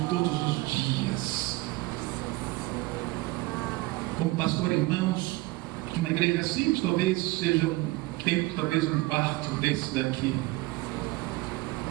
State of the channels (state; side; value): quieter; left; 20.9 dB